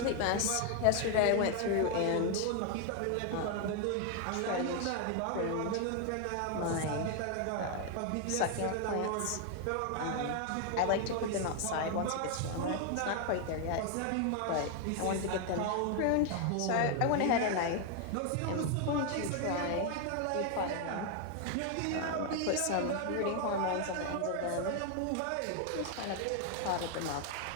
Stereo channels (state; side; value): different; both; correlation 0.00